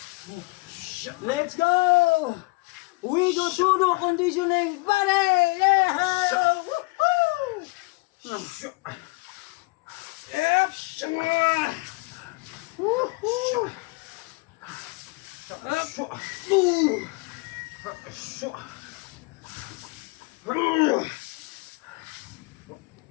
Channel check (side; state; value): right; quieter; 26.1 dB